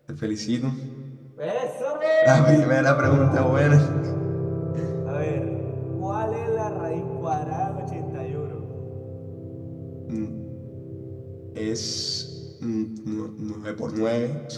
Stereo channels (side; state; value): both; identical; correlation 1.00